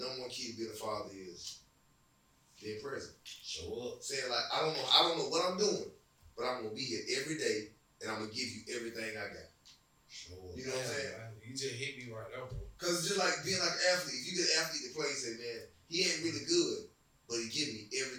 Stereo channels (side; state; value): both; identical; correlation 1.00